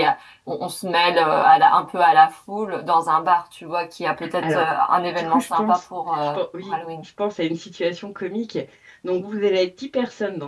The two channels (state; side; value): identical; both; correlation 1.00